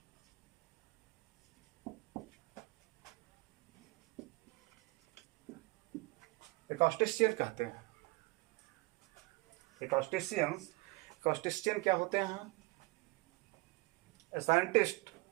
एकॉस्टिशियन कहते हैं। एकॉस्टिशियन क्या होते हैं? A scientist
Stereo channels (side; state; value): left; quieter; 23.8 dB